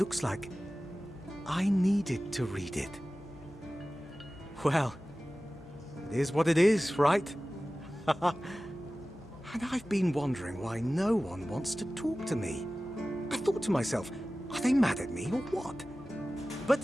like I needed to read it. Well, it is what it is, right? And I've been wondering why no one wants to talk to me. I thought to myself, are they mad at me or what? But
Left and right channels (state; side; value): normal; both; correlation 0.96